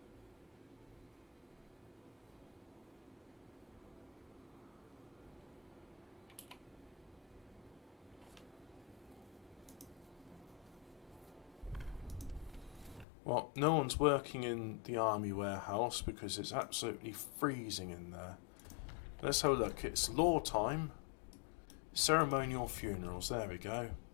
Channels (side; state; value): right; drops out; at 13.1 s